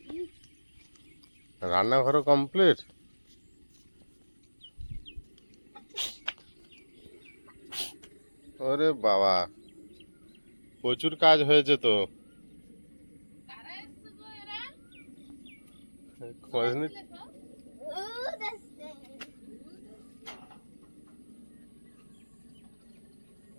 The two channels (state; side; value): inverted; both; correlation -1.00